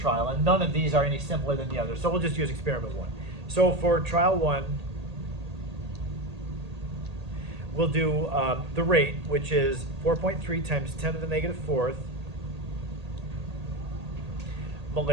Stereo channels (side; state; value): left; late; 1.8 ms